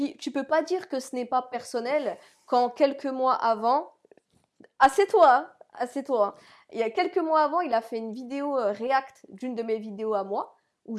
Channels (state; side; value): identical; both; correlation 1.00